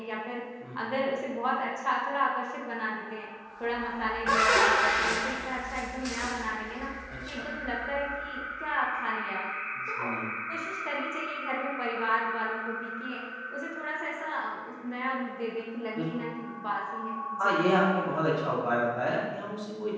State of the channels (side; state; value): both; identical; correlation 1.00